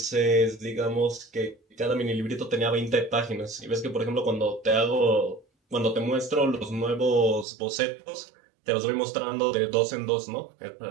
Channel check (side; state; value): left; drops out; at 7.5 s